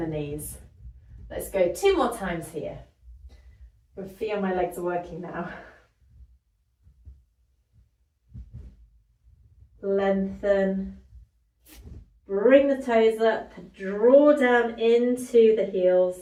knees. Let's go 2 more times here. I feel my legs are working now. Lengthen, bring the toes up, draw down into the heels,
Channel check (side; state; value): both; identical; correlation 1.00